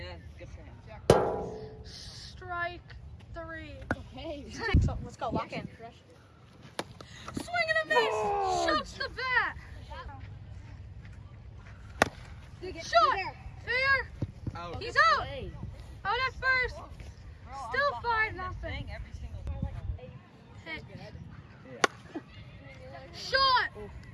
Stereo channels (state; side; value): identical; both; correlation 1.00